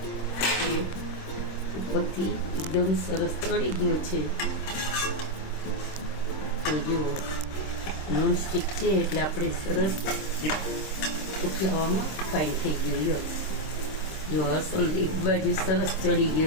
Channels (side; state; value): right; late; 26 ms